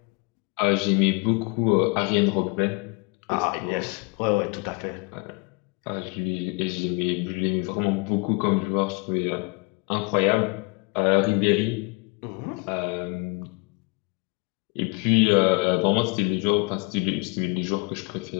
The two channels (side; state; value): right; quieter; 30.4 dB